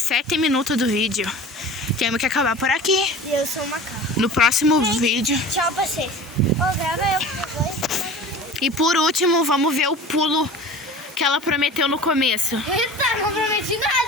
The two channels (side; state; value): both; normal; correlation 0.39